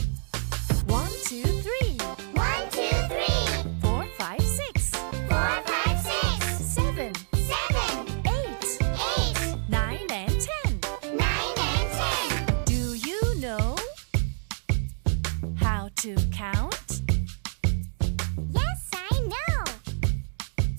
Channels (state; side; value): silent; left; digital silence